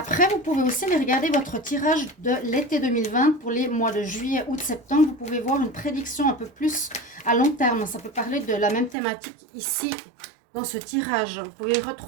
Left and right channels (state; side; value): drops out; left; at 9.0 s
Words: vous pouvez aussi aller regarder votre tirage de l'été 2020 pour les mois de juillet, août, septembre. Vous pouvez voir une prédiction un peu plus à long terme. Ça peut parler de la même thématique ici dans ce tirage. Vous pouvez